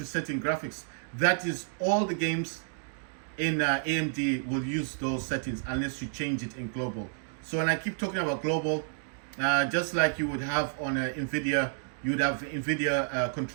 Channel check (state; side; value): silent; left; digital silence